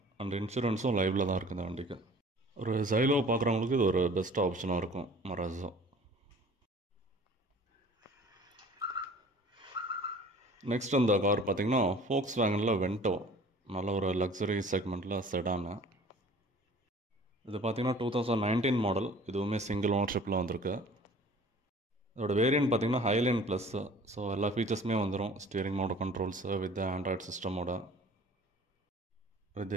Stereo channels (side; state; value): both; normal; correlation 0.48